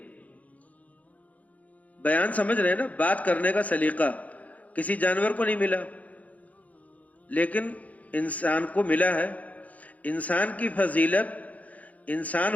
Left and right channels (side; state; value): right; late; 0.072 ms